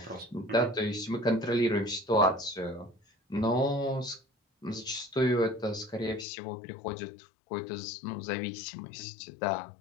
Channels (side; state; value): right; drops out; at 6.2 s